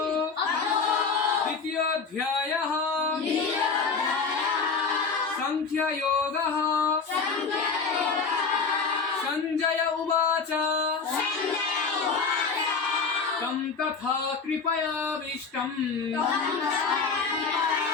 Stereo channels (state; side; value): quieter; right; 5.0 dB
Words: द्वितीयोऽध्यायः सांख्ययोगः। संजय उवाच तं तथा कृपयाविष्टम्